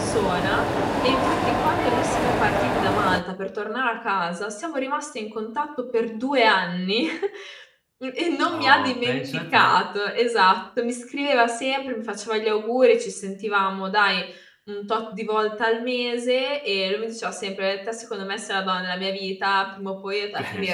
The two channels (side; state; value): both; identical; correlation 1.00